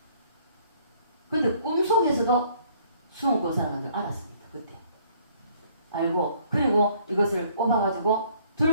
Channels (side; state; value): both; inverted; correlation -0.60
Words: 근데 꿈속에서도 수원 권사라는 걸 알았습니다. 그때. 알고 그리고 이것을 뽑아가지고